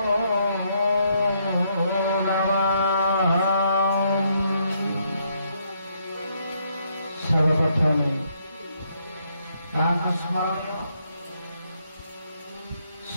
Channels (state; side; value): inverted; both; correlation -0.74